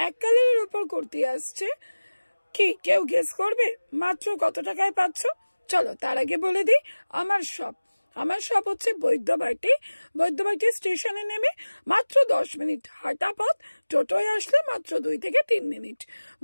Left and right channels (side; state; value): both; inverted; correlation -1.00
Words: এক কালারের উপর কুর্তি আসছে। কি কেউ গেস করবে মাত্র কত টাকায় পাচ্ছ? চলো তার আগে বলে দিই আমার শপ হচ্ছে বৈদ্যবাটি স্টেশনে নেমে মাত্র 10 মিনিট হাঁটা পথ, টোটোয় আসলে মাত্র 2 থেকে 3 মিনিট।